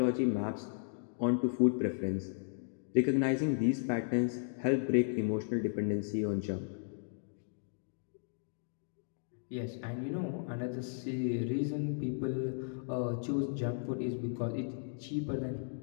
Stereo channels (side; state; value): right; silent; digital silence